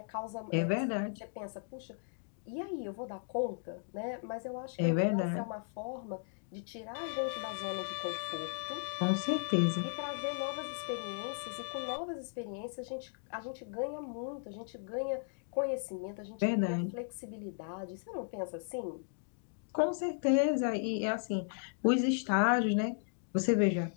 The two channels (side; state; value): right; silent; digital silence